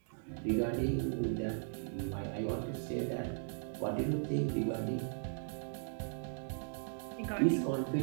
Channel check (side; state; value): left; silent; digital silence